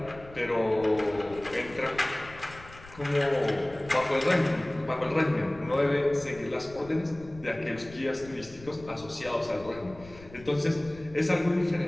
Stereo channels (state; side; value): noise; left; rumble, 19 dB below the sound